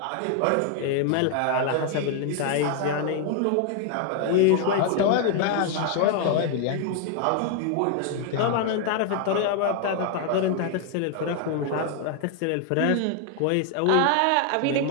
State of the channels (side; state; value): both; different; correlation 0.00